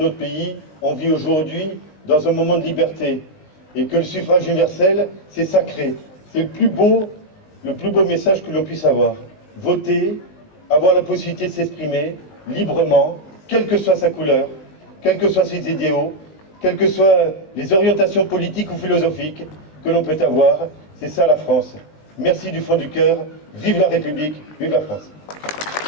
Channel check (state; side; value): late; right; 19 ms